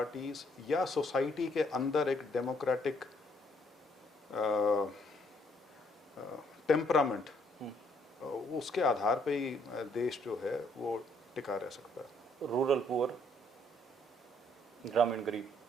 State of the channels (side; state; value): both; normal; correlation 0.67